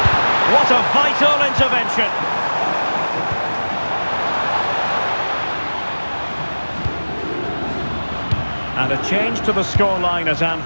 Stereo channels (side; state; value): both; inverted; correlation -1.00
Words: What a vital intervention. And a change to the scoreline at